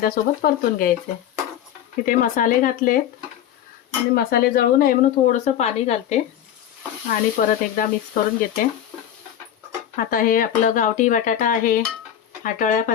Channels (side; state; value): right; quieter; 10.5 dB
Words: परतून घ्यायचे. तिथे मसाले घातले आणि मसाले जळू नये म्हणून थोडंसं पाणी घालते आणि परत एकदा मिक्स करून घेते. आता हे आपलं गावठी बटाटा आहे, हाटोळ्या